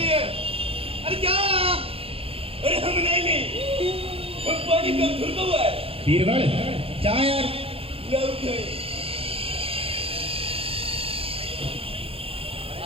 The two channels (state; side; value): late; left; 0.27 ms